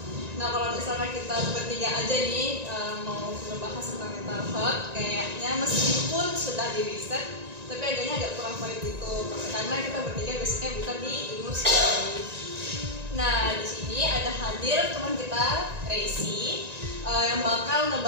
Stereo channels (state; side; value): late; left; 1.9 ms